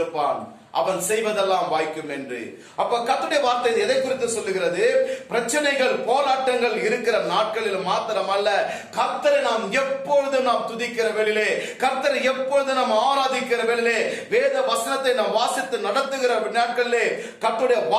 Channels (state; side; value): identical; both; correlation 1.00